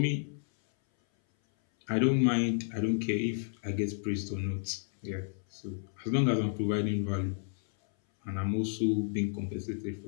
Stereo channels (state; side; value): silent; right; 57 dB below the other